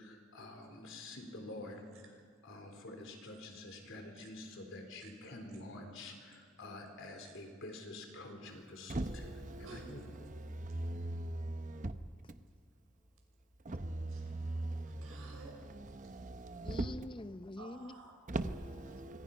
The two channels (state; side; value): normal; both; correlation 0.76